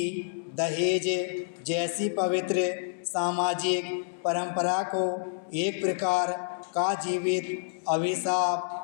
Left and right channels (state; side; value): silent; right; digital silence